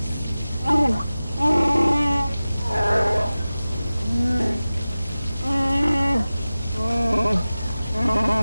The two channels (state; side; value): inverted; both; correlation -0.97